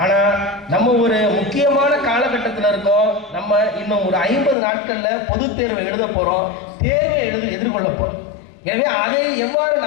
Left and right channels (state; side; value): drops out; right; at 4.5 s